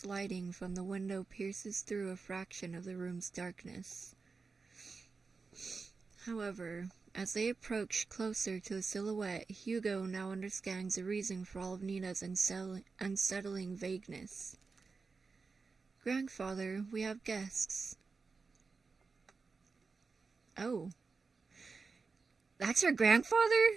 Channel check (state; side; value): quieter; left; 4.5 dB